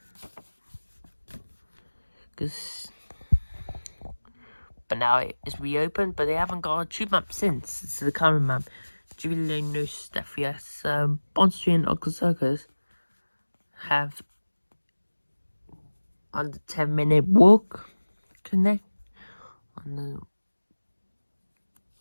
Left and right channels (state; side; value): inverted; both; correlation -1.00